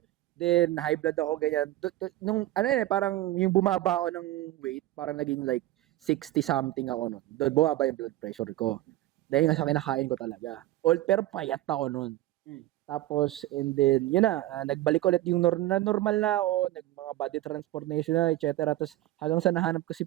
Then, high blood ako, ganyan. Parang yung bumaba ako ng weight, parang naging like 60 something ako nun. Doon bumaba yung blood pressure ko. Dahil nga sa kinakain ko talaga. Pero payat ako nun. Tapos, and then, yun na, nagbalik ulit yung normal na ako, mga body transformation na, etc. Tapos, hanggang sa nahanap ko si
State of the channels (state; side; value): quieter; left; 15.8 dB